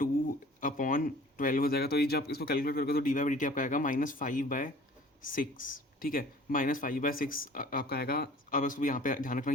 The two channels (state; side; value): normal; both; correlation 0.49